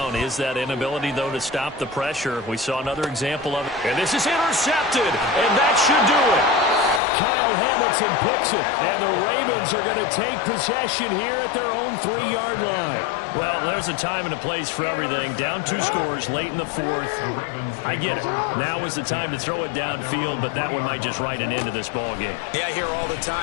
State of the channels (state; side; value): drops out; right; at 7.0 s